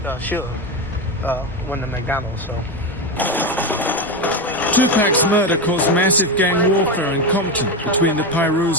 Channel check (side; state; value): both; normal; correlation 0.14